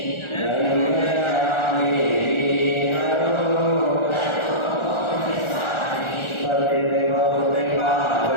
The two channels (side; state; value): right; late; 1.4 ms